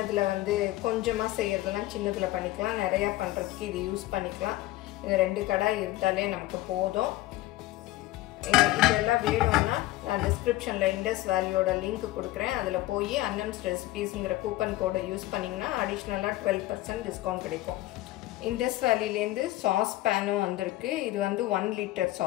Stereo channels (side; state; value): right; quieter; 17.0 dB